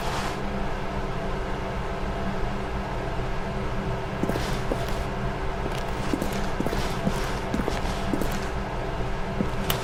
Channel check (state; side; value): identical; both; correlation 1.00